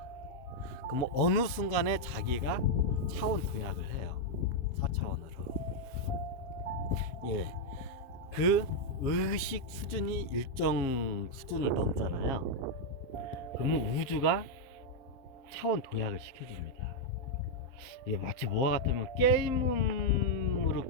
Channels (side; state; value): right; late; 7.4 ms